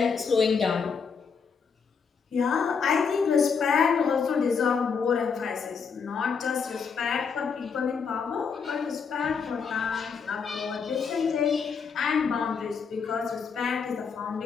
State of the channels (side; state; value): right; quieter; 5.9 dB